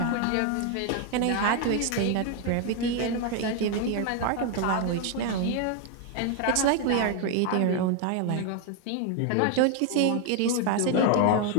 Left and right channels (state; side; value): different; both; correlation 0.01